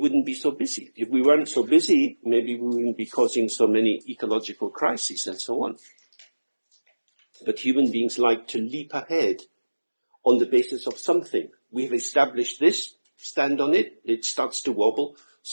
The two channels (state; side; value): inverted; both; correlation -1.00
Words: be so busy. If we weren't so busy, maybe we wouldn't be causing so many ecological crises and so on. But human beings like to leap ahead on the basis of something. We've established this, stand on it, it starts to wobble,